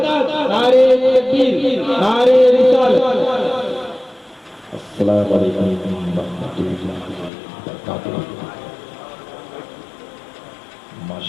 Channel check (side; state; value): right; drops out; at 7.3 s